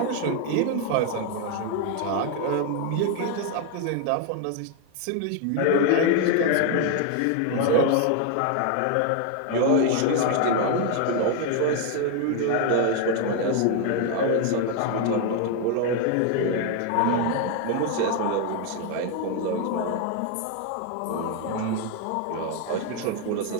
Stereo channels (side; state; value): both; different; correlation 0.01